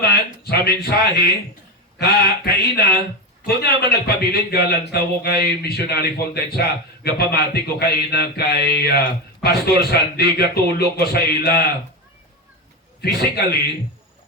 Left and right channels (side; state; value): both; normal; correlation 0.17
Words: sa mensahe kaina kung naman nagpabilin galang tawo kay missionary Fontaine sa gapamati ko kaina kay Pastor Sandy gatulog ko sa ila physically